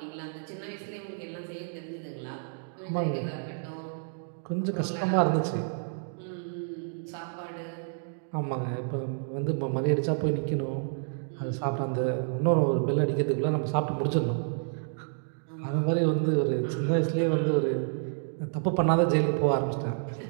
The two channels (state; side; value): silent; left; digital silence